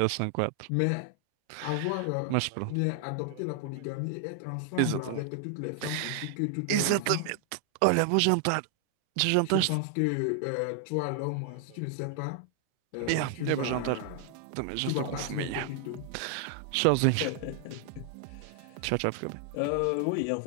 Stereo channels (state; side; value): different; both; correlation 0.00